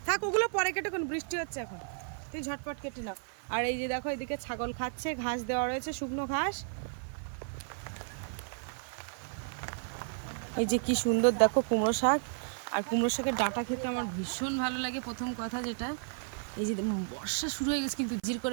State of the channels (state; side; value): silent; left; 56 dB below the other